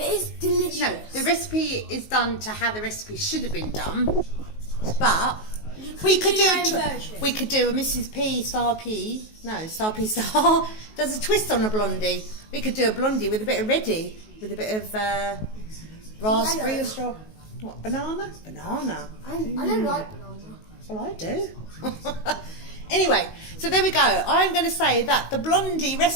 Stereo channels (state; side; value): late; right; 19 ms